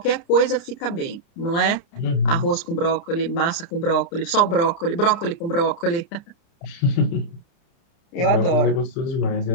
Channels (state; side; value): late; right; 29 ms